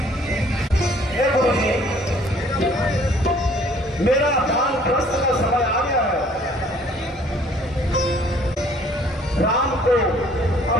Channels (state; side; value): normal; both; correlation 0.58